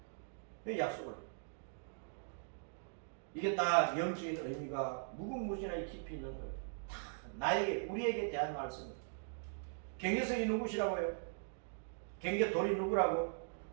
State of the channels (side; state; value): left; silent; digital silence